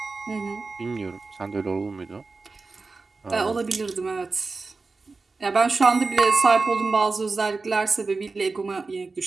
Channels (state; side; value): quieter; left; 4.0 dB